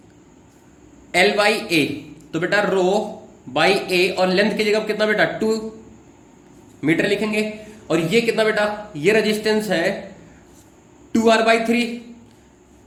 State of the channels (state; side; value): identical; both; correlation 1.00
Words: L by A, तो बेटा रो बाई ए और लेंथ की जगह कितना बेटा 2 मीटर लिखेंगे, और ये कितना बेटा ये रेजिस्टेंस है 2R by 3